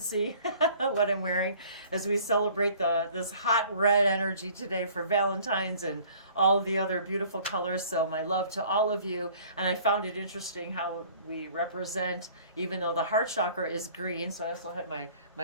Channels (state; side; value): inverted; both; correlation -0.52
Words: what I'm wearing as we celebrate this hot red energy today for Valentine's and all of the other beautiful colors. So my love to all of you. And I found it interesting how we represent, even though the heart chakra is green. So I also have my